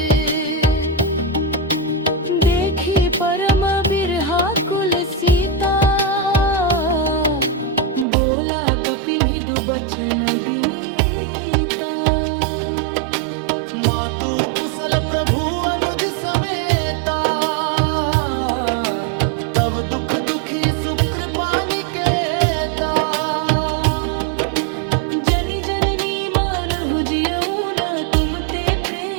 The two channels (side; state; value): left; drops out; at 8.1 s